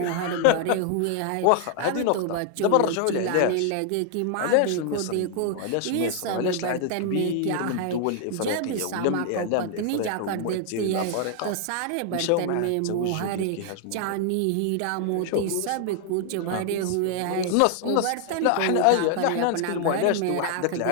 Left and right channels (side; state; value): both; different; correlation 0.00